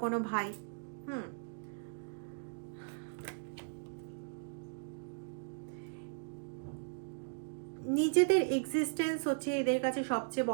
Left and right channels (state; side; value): silent; left; digital silence